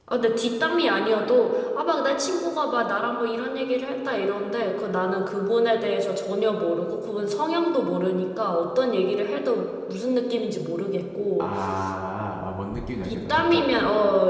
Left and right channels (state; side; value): identical; both; correlation 1.00